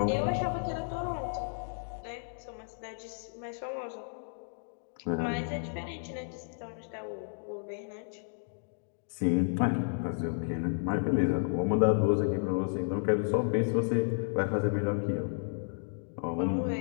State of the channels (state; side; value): silent; right; digital silence